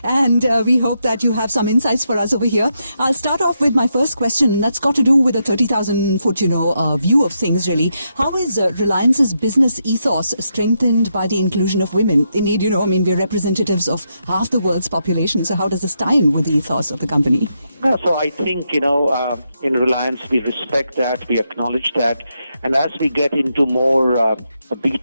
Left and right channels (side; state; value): both; inverted; correlation -0.82